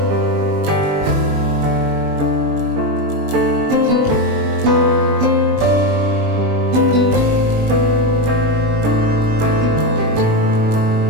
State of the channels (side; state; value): left; late; 28 ms